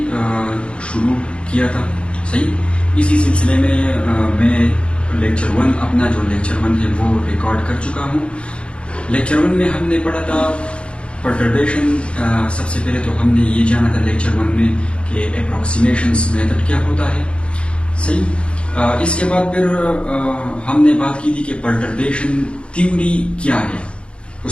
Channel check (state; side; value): late; right; 0.058 ms